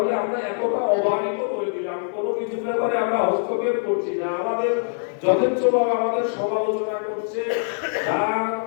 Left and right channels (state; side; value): silent; right; 63 dB below the other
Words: আমরা এতটা অবহেলিত করে দিলাম, কোনো কিছু ব্যাপারে আমরা হস্তক্ষেপ করছি না, আমাদের যথেচ্ছভাবে আমাদের সমালোচনা করছে,